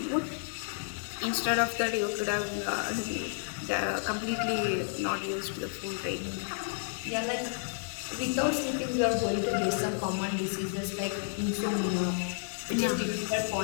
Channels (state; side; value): silent; right; digital silence